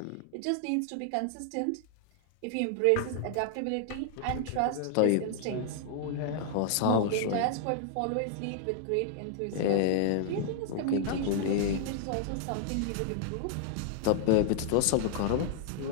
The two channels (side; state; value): both; different; correlation -0.01